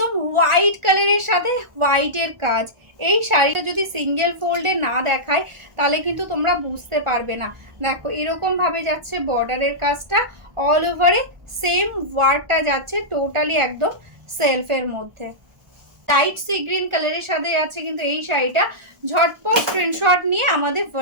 হোয়াইট কালারের সাথে হোয়াইটের কাজ। এই শাড়িটা যদি সিঙ্গেল ফোল্ডে না দেখায় তাহলে কিন্তু তোমরা বুঝতে পারবে না। দেখো এরকম ভাবে যাচ্ছে বর্ডারের কাজটা, অল ওভারে সেম ওয়ার্কটা যাচ্ছে টোটালি একদম সেলফের মধ্যে। লাইট সি গ্রিন কালারের সাথে আছে কিন্তু এই শাড়িটা। ঝটপট স্ক্রিনশট নিয়ে আমাদের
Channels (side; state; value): left; late; 1.4 ms